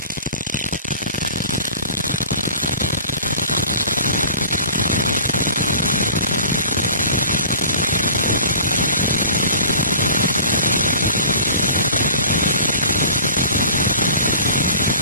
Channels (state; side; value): inverted; both; correlation -0.43